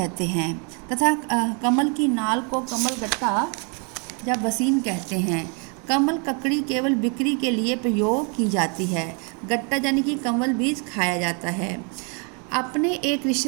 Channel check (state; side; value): quieter; left; 36.1 dB